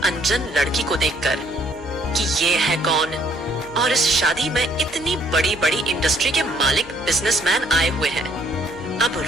लड़की को देखकर कि ये है कौन, और इस शादी में इतनी बड़ी बड़ी इंडस्ट्री के मालिक बिजनेसमैन आए हुए हैं। अब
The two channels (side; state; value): left; noise; hum, 19 dB below the sound